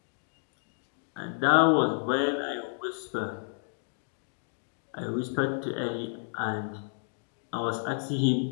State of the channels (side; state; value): right; silent; digital silence